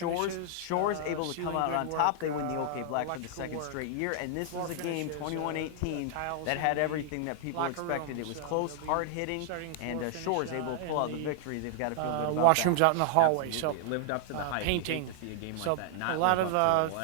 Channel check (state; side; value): different; both; correlation -0.01